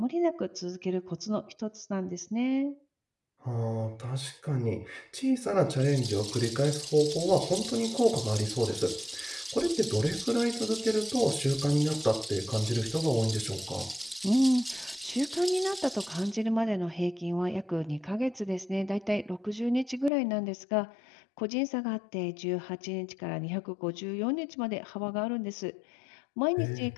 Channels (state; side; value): drops out; right; at 20.1 s